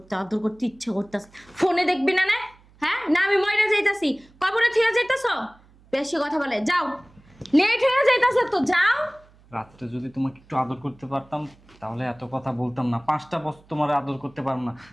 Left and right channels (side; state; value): right; noise; hum, 28 dB below the sound